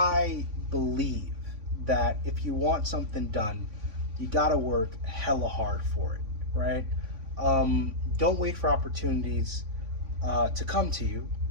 believe that if you want something done, you gotta work hella hard for it, right? Don't wait for opportunities to come to you,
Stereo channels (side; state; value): left; late; 3.5 ms